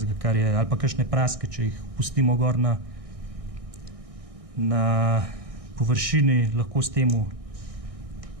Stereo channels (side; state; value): left; late; 1.6 ms